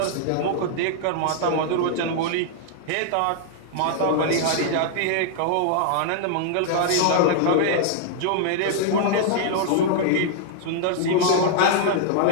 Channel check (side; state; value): both; different; correlation -0.01